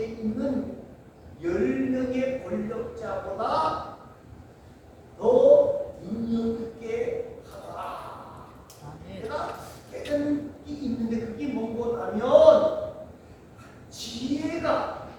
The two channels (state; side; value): identical; both; correlation 1.00